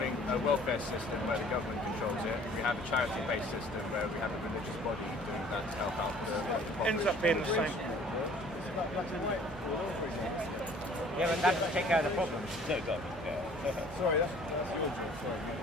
a welfare system where the government controls it, we have a charity-based system where we have a religious body doing that to help out the population? Ends up being the same. Yeah, but that doesn't take care of the problem. No, it doesn't. Yeah. Sorry, that's your job. Sorry.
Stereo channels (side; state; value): both; normal; correlation 0.53